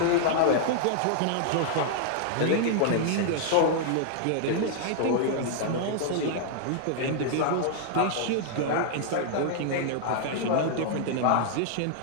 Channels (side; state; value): both; different; correlation -0.01